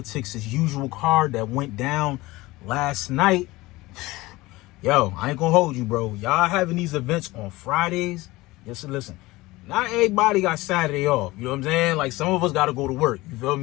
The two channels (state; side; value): quieter; right; 20.0 dB